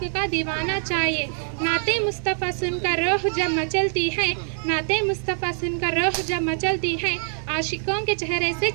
का दीवाना चाहिए। नाते मुस्तफ़ा सुनकर रूह जब मचलती है, नाते मुस्तफ़ा सुनकर रूह जब मचलती है, आशिकों के चेहरे से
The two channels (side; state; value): left; silent; 59 dB below the other